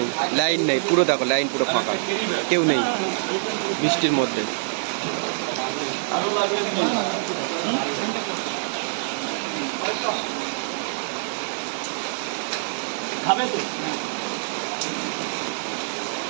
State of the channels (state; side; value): silent; left; 62 dB below the other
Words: লাইন নেই, পুরো দেখো লাইন পুরো ফাঁকা, কেউ নেই বৃষ্টির মধ্যে। আরো লাগবে কি? খাবে তো